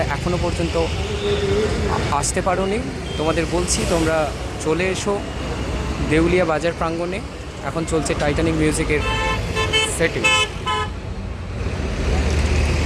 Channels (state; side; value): identical; both; correlation 1.00